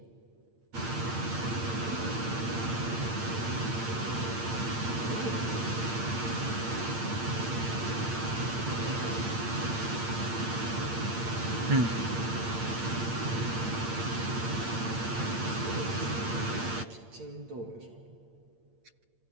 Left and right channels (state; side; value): late; left; 8.7 ms